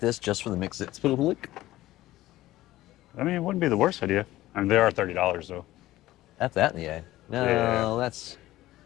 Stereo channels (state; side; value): quieter; right; 16.0 dB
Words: just for the mix? It's public. I mean, it wouldn't be the worst idea. I mean, they are $30 though. That's that in the A. No, Yeah. that's